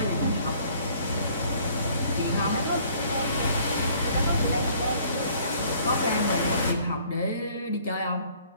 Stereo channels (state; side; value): inverted; both; correlation -0.58